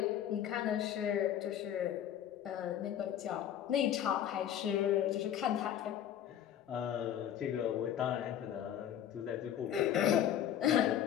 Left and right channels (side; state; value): right; quieter; 10.4 dB